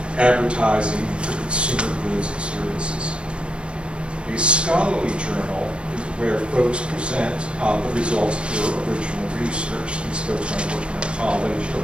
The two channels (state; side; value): late; left; 0.058 ms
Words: advertising for consumer goods and services. A scholarly journal is where folks present the results of their original research. These folks might work in a college or